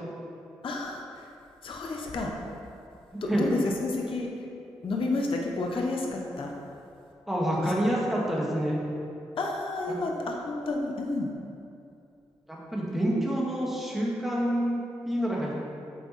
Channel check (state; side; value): normal; both; correlation 0.83